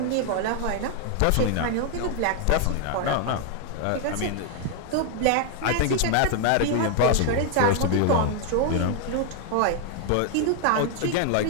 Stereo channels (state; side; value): different; both; correlation 0.00